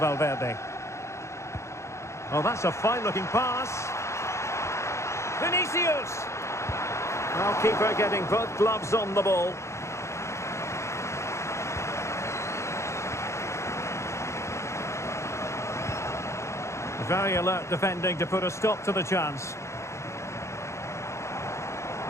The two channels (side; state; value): right; late; 0.14 ms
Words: Oh, that's a fine-looking pass. Vinicius. Well, keeper getting both gloves on the ball. Very alert defending to put a stop to the chance.